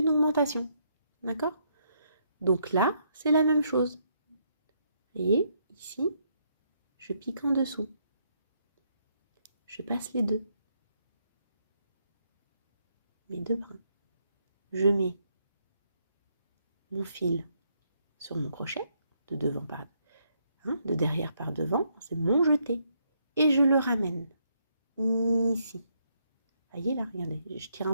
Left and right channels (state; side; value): inverted; both; correlation -0.74